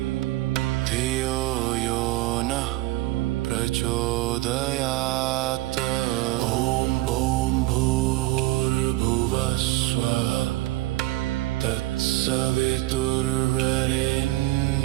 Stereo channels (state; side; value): quieter; left; 17.7 dB